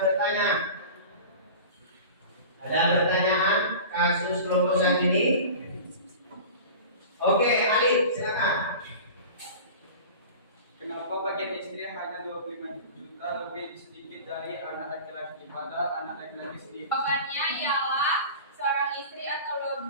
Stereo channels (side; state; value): both; inverted; correlation -0.36